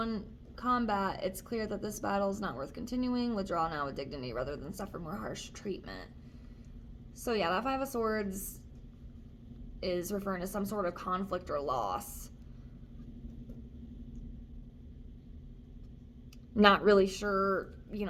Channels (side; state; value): both; identical; correlation 1.00